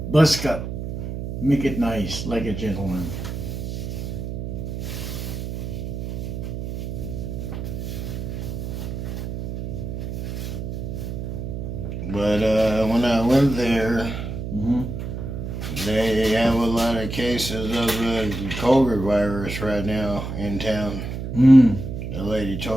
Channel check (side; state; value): right; noise; hum, 5 dB below the sound